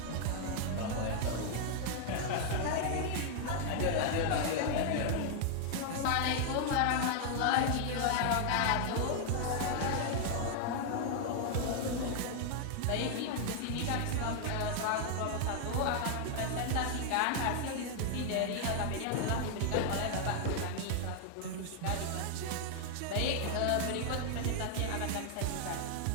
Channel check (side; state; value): both; different; correlation 0.00